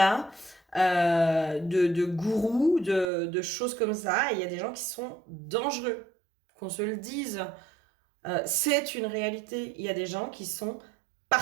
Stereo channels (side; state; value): left; drops out; at 3.1 s